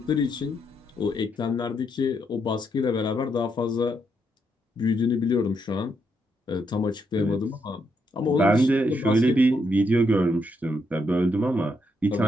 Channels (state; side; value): normal; both; correlation 0.78